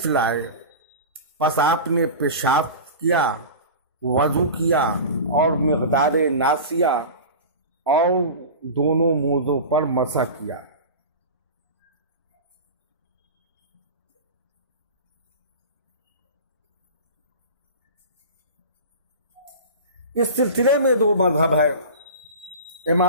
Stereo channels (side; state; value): both; inverted; correlation -0.31